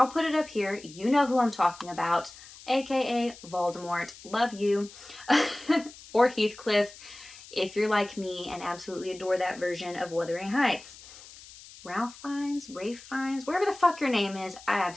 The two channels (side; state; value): left; noise; hiss, 19 dB below the sound